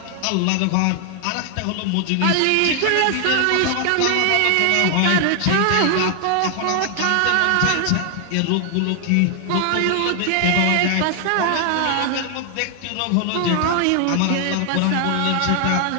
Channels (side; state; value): both; different; correlation 0.00